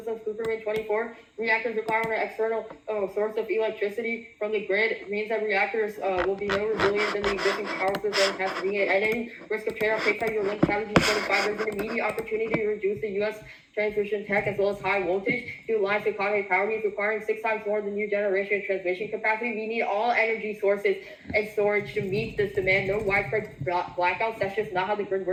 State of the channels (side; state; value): both; identical; correlation 1.00